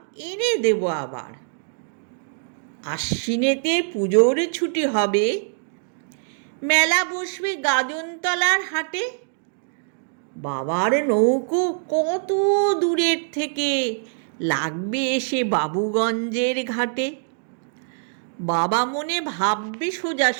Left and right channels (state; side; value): silent; left; digital silence